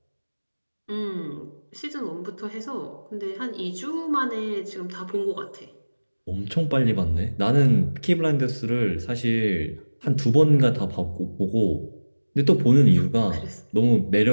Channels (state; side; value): inverted; both; correlation -1.00